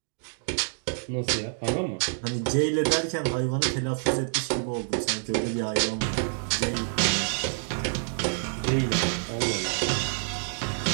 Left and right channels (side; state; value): left; silent; 60 dB below the other